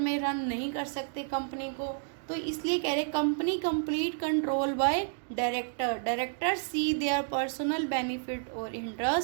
रन नहीं कर सकते कंपनी को। तो इसलिए कह रहे company complete control by director. Director see their personal benefit और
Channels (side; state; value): left; silent; digital silence